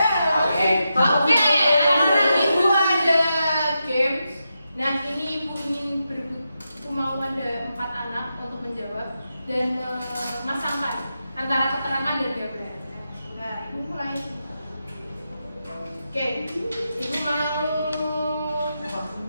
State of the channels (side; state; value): both; inverted; correlation -0.87